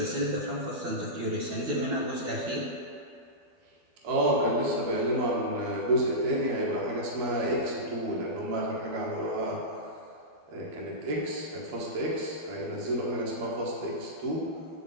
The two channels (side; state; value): left; late; 12 ms